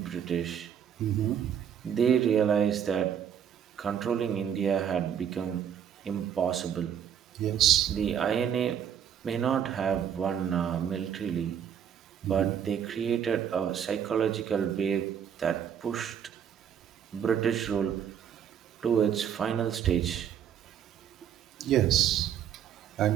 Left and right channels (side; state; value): left; quieter; 8.8 dB